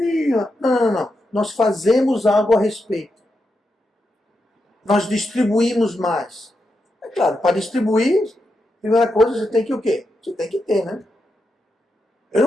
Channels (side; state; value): both; normal; correlation 0.85